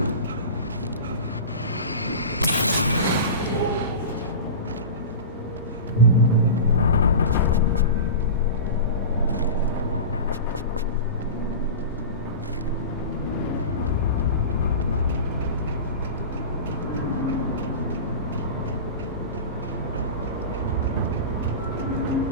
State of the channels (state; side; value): inverted; both; correlation -0.30